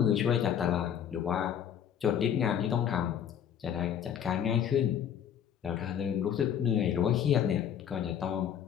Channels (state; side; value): quieter; right; 9.1 dB